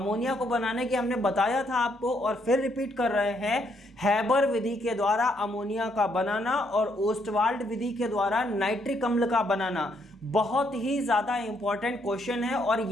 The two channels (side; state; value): both; normal; correlation 0.73